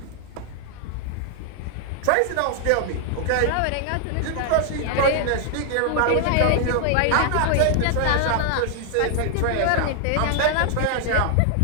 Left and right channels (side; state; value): both; different; correlation 0.00